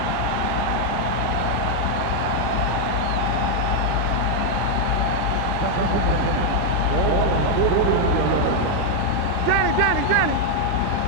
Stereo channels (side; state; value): both; different; correlation 0.00